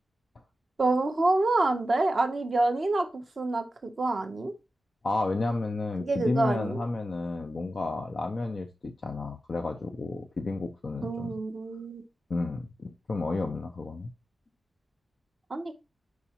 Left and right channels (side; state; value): both; normal; correlation 0.92